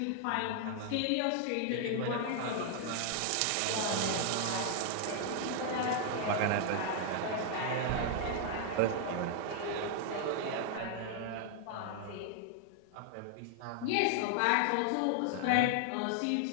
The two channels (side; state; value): both; different; correlation 0.00